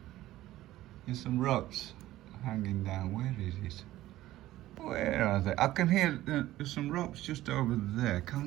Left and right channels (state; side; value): quieter; left; 15.3 dB